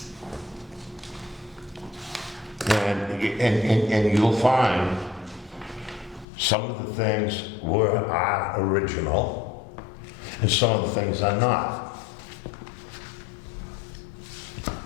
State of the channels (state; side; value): drops out; right; at 6.2 s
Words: And you'll find some of the things are original, and some of the things are not.